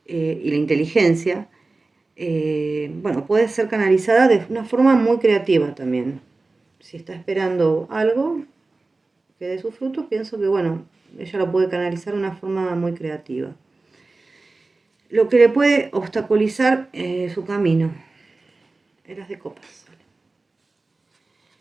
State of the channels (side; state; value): left; quieter; 3.4 dB